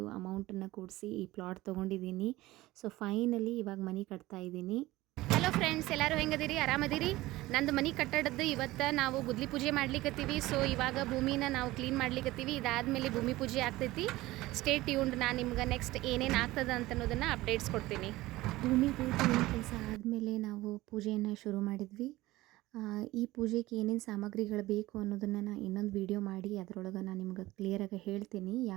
ಅಮೌಂಟನ್ನು ಕೂಡಿಸಿ ಈ ಪ್ಲಾಟ್ ತೊಗೊಂಡಿದ್ದೀನಿ. ಸೊ ಫೈನಲಿ ಇವಾಗ ಮನೆ ಕಟ್ತಾ ಇದ್ದೀನಿ. ಹಲೋ ಫ್ರೆಂಡ್ಸ್, ಎಲ್ಲರೂ ಹೆಂಗದಿರಿ? ಆರಾಮದಿರಿ? ನಂದು ಮನೆ ಕಟ್ಟಡದ್ದು ಇವತ್ತು ನಾವು ಗುದ್ಲಿ ಪೂಜೆ ಮಾಡ್ಲಿಕ್ಕತ್ತೀವಿ. ಸೊ ಇವಾಗ ಭೂಮಿನ ನಾವು ಕ್ಲೀನ್ ಮಾಡ್ಲಿಕ್ಕತ್ತೀವಿ. ಇದಾದಮೇಲೆ ಭೂಮಿ ಪೂಜೆ ಆಗ್ತೈತಿ. Stay tuned. ನಾನು ನಿಮ್ಗೆ ನೆಕ್ಸ್ಟ್ ಏನೇನು ಆಗ್ತದೆ ಅಂತ ಅನ್ನೋದನ್ನು ಅಪ್ಡೇಟ್ಸ್ ಕೊಡ್ತೀನಿ. ಭೂಮಿ ಕೆಲಸ ಆದಮೇಲೆ ನಾವು ಪೂಜೆಯನ್ನು ಶುರು ಮಾಡಿದ್ವಿ. ಈ ಪೂಜೆಗೆ ಏನೇನು ಸಾಮಗ್ರಿಗಳು ಬೇಕು ಅನ್ನೋದನ್ನು ನಾನು ಇನ್ನೊಂದು ವಿಡಿಯೋ ಮಾಡಿ ಅದರೊಳಗೆ ನಾನು ನಿಮ್ಗೆ ಕ್ಲಿಯರಾಗಿ ಹೇಳ್ತೀನಿ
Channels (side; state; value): left; quieter; 18.2 dB